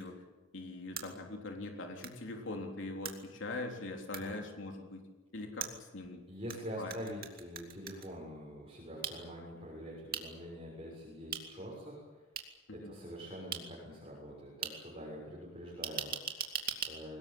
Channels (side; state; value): both; normal; correlation 0.19